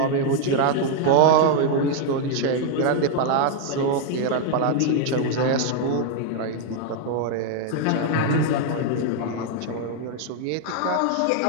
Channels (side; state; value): both; different; correlation 0.00